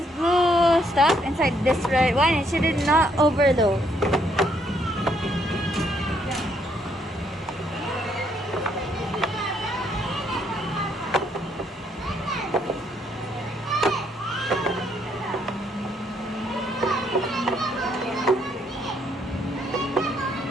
blue stuff inside this red one. It should not overload.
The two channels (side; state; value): both; normal; correlation 0.71